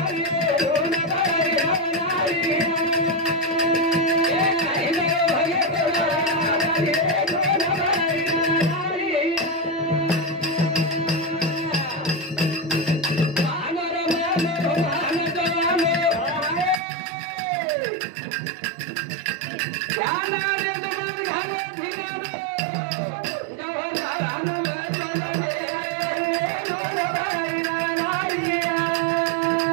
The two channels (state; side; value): drops out; left; at 16.8 s